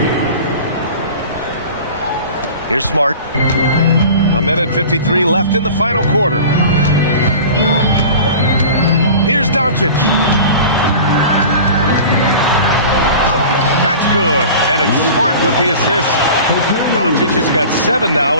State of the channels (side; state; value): both; inverted; correlation -0.39